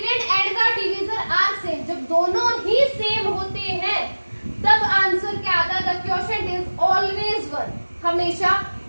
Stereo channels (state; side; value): inverted; both; correlation -1.00